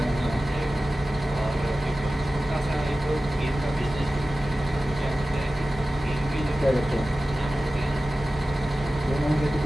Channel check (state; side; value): normal; both; correlation 0.95